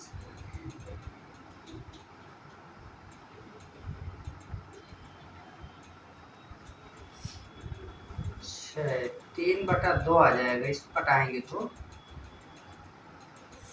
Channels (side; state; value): both; identical; correlation 1.00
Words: 3/2 आ जाएगा। इसको कटाएंगे तो